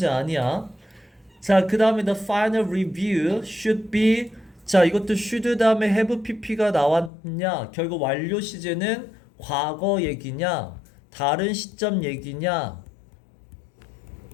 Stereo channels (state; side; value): drops out; right; at 7.1 s